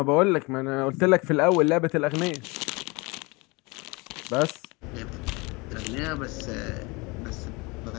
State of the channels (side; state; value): right; quieter; 26.4 dB